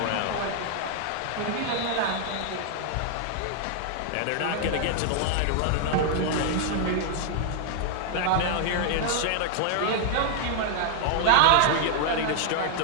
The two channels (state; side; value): different; both; correlation 0.00